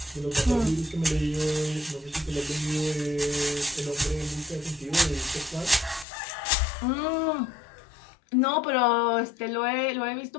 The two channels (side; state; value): right; drops out; at 6.1 s